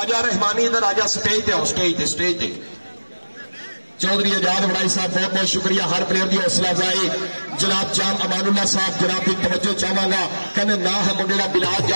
आजा रहमानी इधर आजा स्टेज पे स्टेज पे चौधरी आजाद वड़ाई साहब बहुत बहुत शुक्रिया हर प्लेयर की हौसला अफजाई। जनाब जाम अमानुल्लाह साहब जनाब की तवज्जो चाहवागा कहने ना है मुंडे का बिलाल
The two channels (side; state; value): both; inverted; correlation -1.00